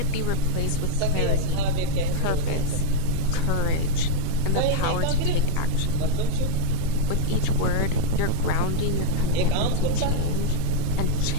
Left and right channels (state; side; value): different; both; correlation -0.01